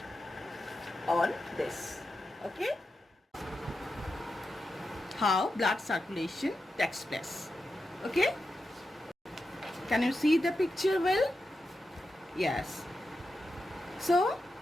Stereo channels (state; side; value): normal; both; correlation 0.89